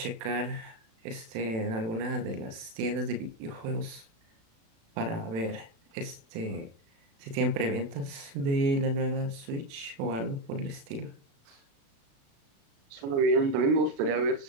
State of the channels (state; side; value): late; left; 36 ms